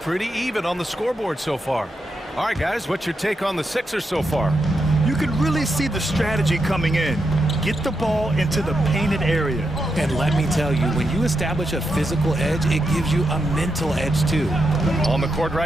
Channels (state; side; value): normal; both; correlation 0.85